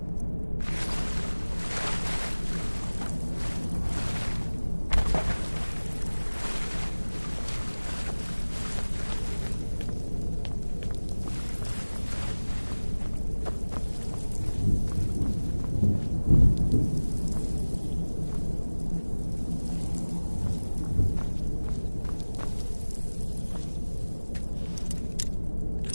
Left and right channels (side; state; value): both; inverted; correlation -1.00